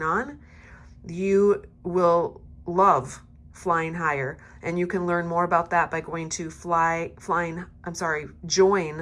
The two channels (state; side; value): identical; both; correlation 1.00